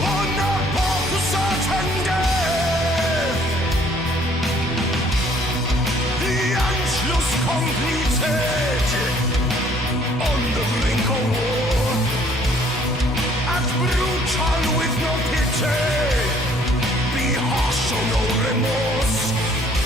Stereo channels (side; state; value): both; normal; correlation 0.60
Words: a path to certain death. The Anschluss completed. On the brink of war, act brutal with no pity, be harsh, show no remorse.